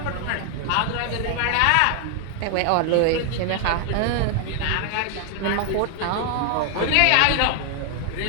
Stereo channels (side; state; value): both; different; correlation 0.00